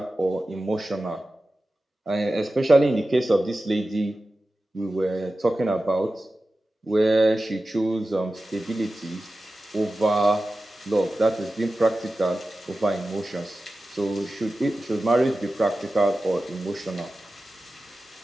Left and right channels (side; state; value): both; normal; correlation 0.94